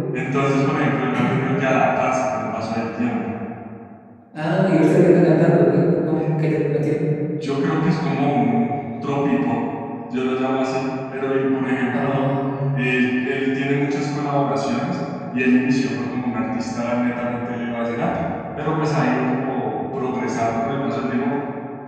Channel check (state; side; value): identical; both; correlation 1.00